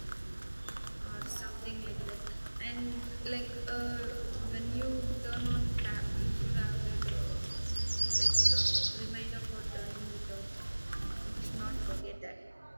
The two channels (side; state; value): both; inverted; correlation -1.00